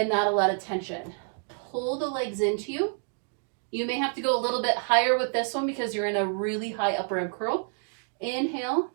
not a lot of tension. Pull the legs into you. You may have to go a little bit higher with this one because you're in a really high upper ab curl. Inhale,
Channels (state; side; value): silent; left; 59 dB below the other